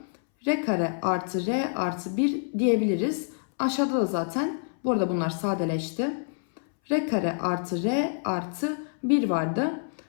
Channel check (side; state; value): right; silent; 60 dB below the other